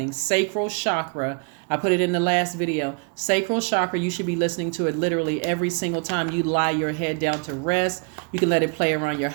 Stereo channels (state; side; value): quieter; left; 36.7 dB